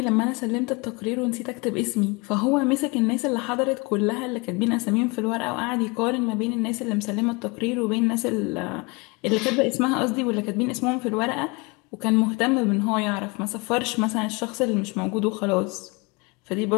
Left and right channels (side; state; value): right; quieter; 27.8 dB